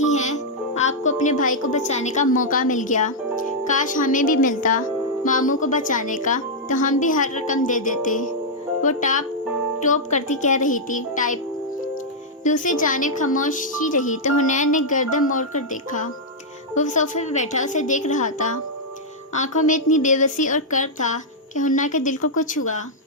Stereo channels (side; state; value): both; normal; correlation -0.05